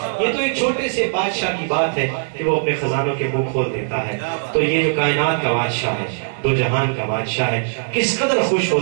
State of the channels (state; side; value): silent; left; digital silence